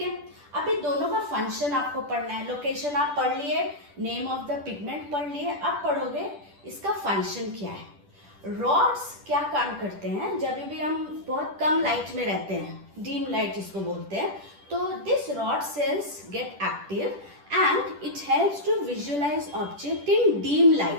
है, अभी दोनों का फंक्शन आपको पढ़ना है। लोकेशन आप पढ़ लिए, नेम ऑफ द पिगमेंट पढ़ लिए, अब पढ़ोगे इसका फंक्शन क्या है। रॉड्स क्या काम करते हैं? जब भी हम बहुत कम लाइट में रहते हैं, डीम लाइट जिसको बोलते हैं, तो this rod cells get active and it helps to visualize object in dim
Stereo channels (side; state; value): left; late; 10 ms